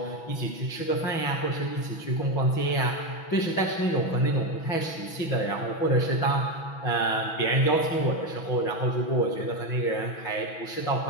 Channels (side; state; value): right; late; 6.1 ms